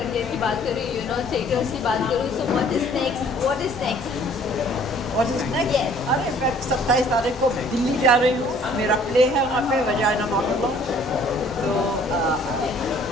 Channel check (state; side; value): normal; both; correlation 0.56